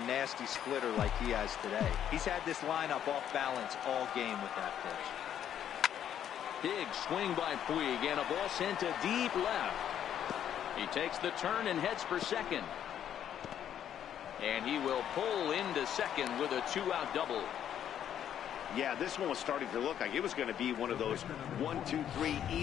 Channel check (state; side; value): quieter; right; 9.9 dB